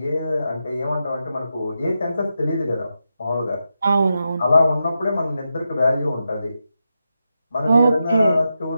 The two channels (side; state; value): both; inverted; correlation -0.87